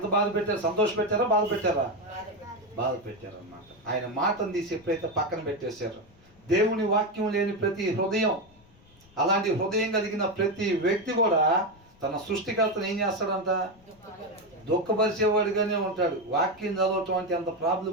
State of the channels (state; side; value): noise; left; rumble, 28 dB below the sound